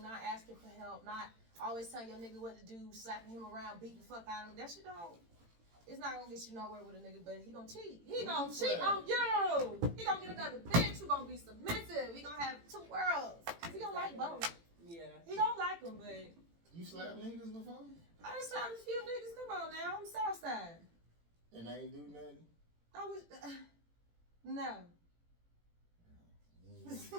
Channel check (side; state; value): left; late; 18 ms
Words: not asking for help, not always telling your nigga what to do, slapping him around, beating the fuck out of him. That shit it's not gonna get you nowhere with a nigga, but he gonna cheat. He gonna cheat on you. He gonna get another bitch who gonna be submissive. He gonna have two worlds. He gonna like both. Yeah. He don't like them, but... You slapped niggas before? I done slapped a few niggas. Come on now. I'm Southside. And they ain't do nothing? I was... no. You No,